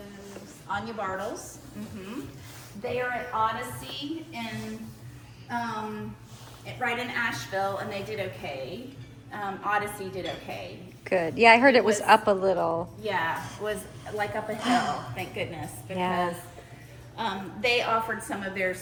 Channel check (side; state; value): both; identical; correlation 1.00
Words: Anya Bartles. They are at Odyssey right in Asheville, and they did okay. Odyssey did okay. Good. Yeah, I heard it was up a little. Yeah, it was like up a hill, thank goodness, because they offered some of their